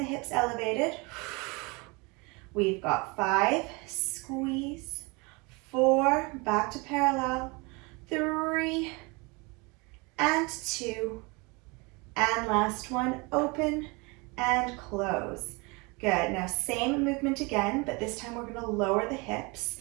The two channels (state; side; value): quieter; left; 27.9 dB